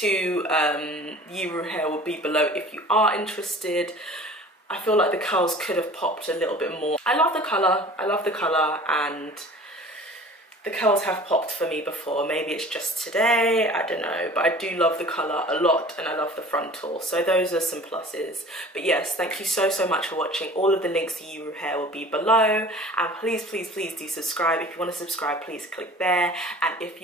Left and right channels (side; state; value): both; normal; correlation 0.44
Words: Yiroo hair will be below if you are interested. I feel like the curls could have popped a little bit more. I love the colour, and the curls have popped for me before. Maybe it's just today, I don't know, but I do love the colour a lot, and I love the frontal, so those are some pluses. But yes, thank you so much for watching. All of the links to Yiroo hair will be below, and please do subscribe. If you want to subscribe, please click there, and if